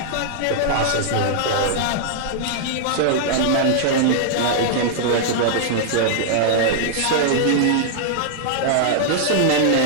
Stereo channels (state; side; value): different; both; correlation -0.01